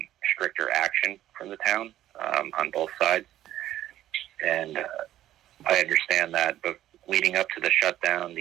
stricter action from the town on both sides. And I understand that, but leading up to the shutdown,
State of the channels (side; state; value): left; quieter; 13.0 dB